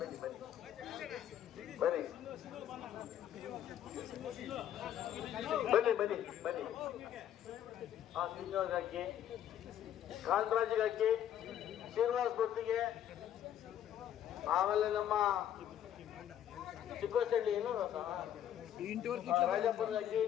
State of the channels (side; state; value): right; quieter; 10.5 dB